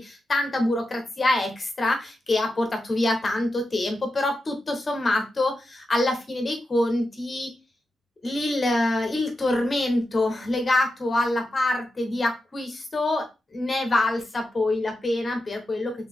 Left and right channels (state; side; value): normal; both; correlation 0.89